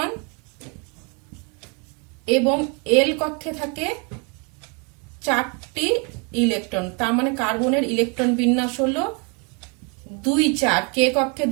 এবং এল কক্ষে থাকে 4টি ইলেকট্রন। তার মানে কার্বনের ইলেকট্রন বিন্যাস হলো 2-4, কে কক্ষে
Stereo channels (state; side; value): quieter; left; 32.6 dB